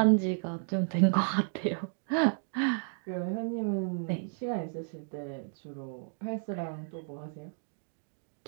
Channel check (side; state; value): left; silent; digital silence